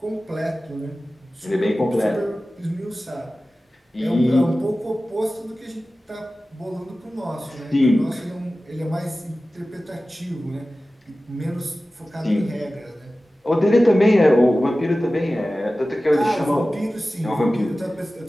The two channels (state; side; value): normal; both; correlation 0.96